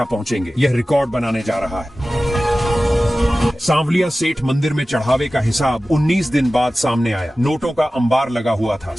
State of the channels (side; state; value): both; normal; correlation 0.96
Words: पहुंचेंगे। यह रिकॉर्ड बनाने जा रहा है। सांवलिया सेठ मंदिर में चढ़ावे का हिसाब 19 दिन बाद सामने आया। नोटों का अंबार लगा हुआ था,